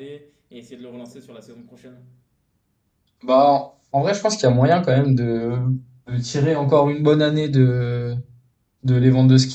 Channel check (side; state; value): both; identical; correlation 1.00